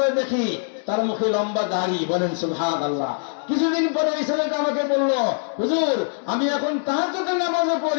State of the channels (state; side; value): silent; right; digital silence